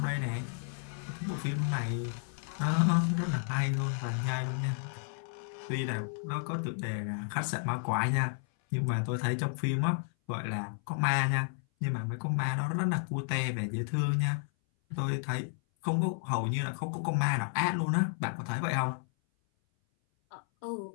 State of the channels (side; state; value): right; silent; 56 dB below the other